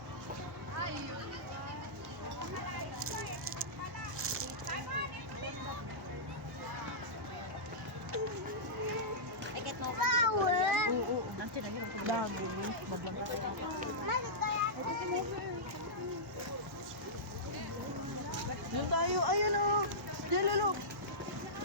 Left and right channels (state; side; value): normal; both; correlation -0.15